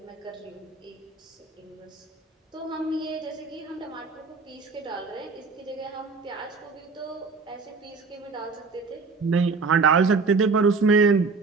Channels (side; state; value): left; quieter; 4.4 dB